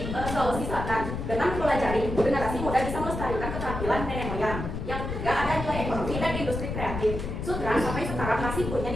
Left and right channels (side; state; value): left; noise; rumble, 5 dB below the sound